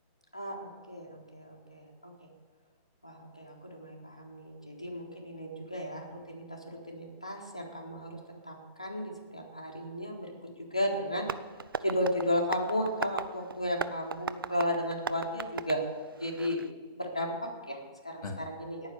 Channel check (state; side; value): inverted; both; correlation -0.57